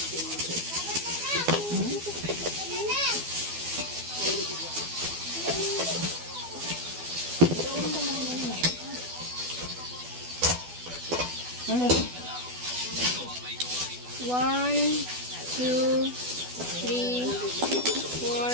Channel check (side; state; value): left; late; 12 ms